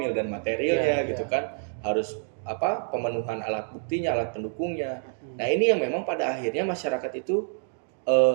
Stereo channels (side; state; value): left; silent; 60 dB below the other